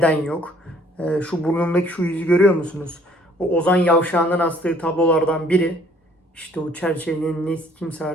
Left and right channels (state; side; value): normal; both; correlation 0.59